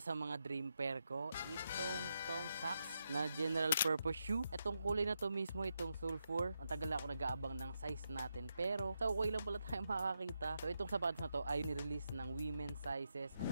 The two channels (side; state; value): both; inverted; correlation -0.84